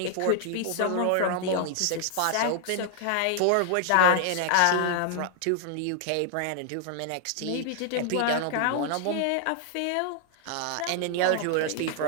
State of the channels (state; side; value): different; both; correlation 0.00